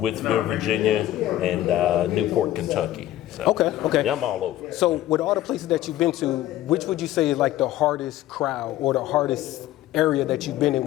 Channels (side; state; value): right; quieter; 14.1 dB